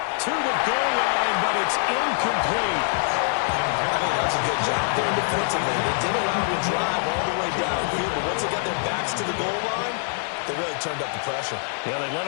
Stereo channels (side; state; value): right; silent; 62 dB below the other